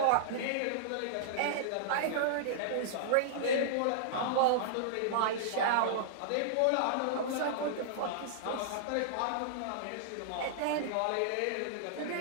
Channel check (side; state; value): both; different; correlation -0.02